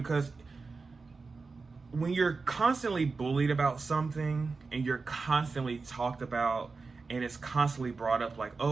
when you're constantly bullied about something and you're constantly talked about and it's constantly brought up like,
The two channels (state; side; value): quieter; left; 4.3 dB